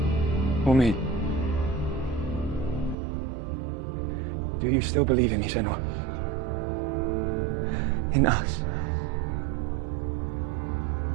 Or me? Do you still believe in me, Senua? In us?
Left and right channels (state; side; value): drops out; left; at 3.0 s